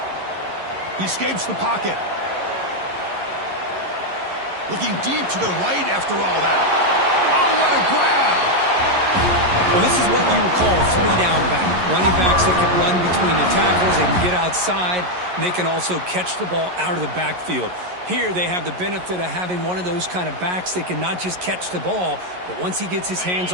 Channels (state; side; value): late; left; 11 ms